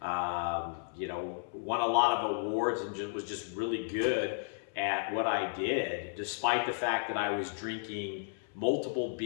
a lot of awards and was just really good at what I did, despite the fact that I was drinking multiple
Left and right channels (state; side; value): silent; right; 55 dB below the other